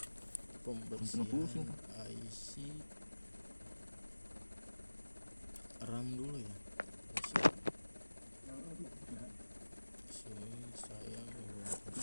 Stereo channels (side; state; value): both; inverted; correlation -1.00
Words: pembersihan IC RAM dulu ya. Sini saya